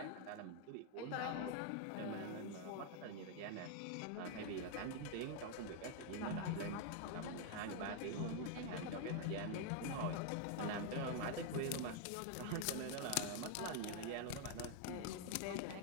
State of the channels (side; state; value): both; different; correlation 0.00